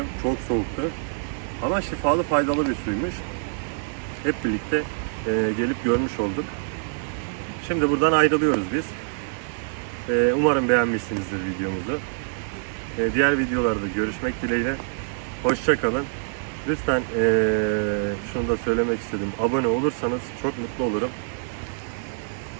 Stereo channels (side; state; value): left; silent; digital silence